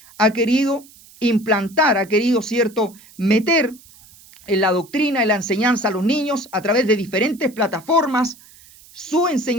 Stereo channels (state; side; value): noise; right; hiss, 24 dB below the sound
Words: ha querido implantar, ha querido, ¿cierto?, meter en la doctrina, en la enseñanza a los niños a través de diferentes plataformas, su